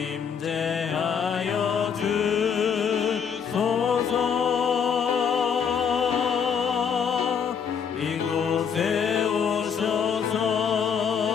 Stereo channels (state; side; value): quieter; right; 7.0 dB